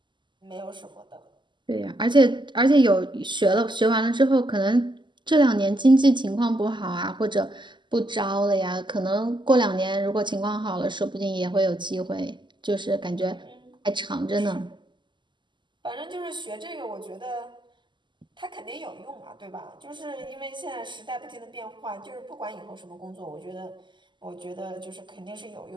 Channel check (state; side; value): late; left; 0.22 ms